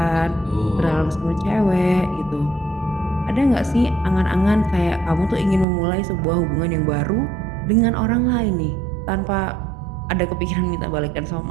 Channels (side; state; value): left; drops out; at 5.7 s